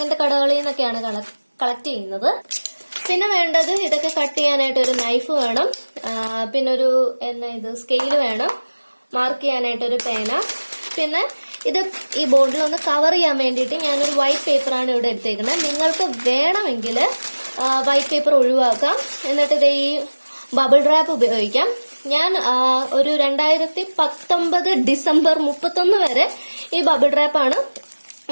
കടകളിൽ നിന്നൊക്കെയാണ് കളക്ട് ചെയ്യുന്നത്. പിന്നെ വേണ്ടത് ഇതൊക്കെ കട്ട് ചെയ്യാനായിട്ട് ഒരു നൈഫ് വേണം, പിന്നെ ഒരു സ്കെയിൽ വേണം, മാർക്ക് ചെയ്യാനായിട്ട് ഒരു പേന, പിന്നെ ഇത് ഈ ബോർഡിൽ ഒന്ന് കവർ ചെയ്യാൻ വേണ്ടിയിട്ട് ഞാനൊരു വൈറ്റ് പേപ്പറാണ് ഇവിടെ എടുത്തേക്കുന്നത്. നിങ്ങൾക്ക് വേണമെങ്കിൽ വൈറ്റ് പേപ്പർ ഒഴിവാക്കാം, എന്നിട്ട് ഇത് ഈ ബബിൾ റാപ്പ് ഉപയോഗിക്കാം. ഞാൻ ഒരു 2019 ഡിസംബർ 31 വരെ ഈ ബബിൾ റാപ്പാണ്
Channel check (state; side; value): inverted; both; correlation -1.00